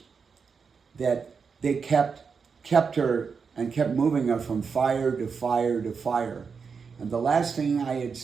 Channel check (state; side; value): quieter; left; 5.6 dB